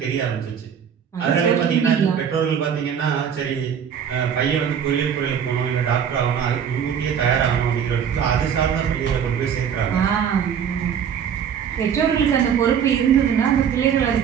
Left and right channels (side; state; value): left; quieter; 8.0 dB